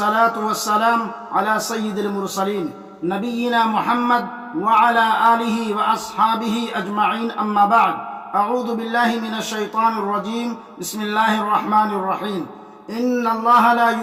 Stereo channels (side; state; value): both; identical; correlation 1.00